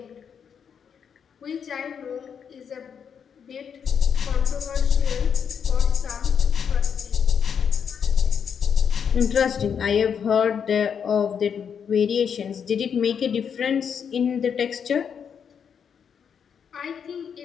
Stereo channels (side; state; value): right; quieter; 7.3 dB